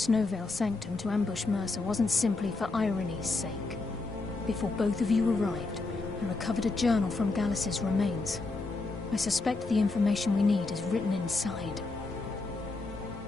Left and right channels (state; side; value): quieter; right; 3.5 dB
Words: Sanctum to ambush Mercer wasn't simply for irony's sake. Before both of you arrived, I recovered a journal from Gallus's remains. I suspect the information we need is written inside.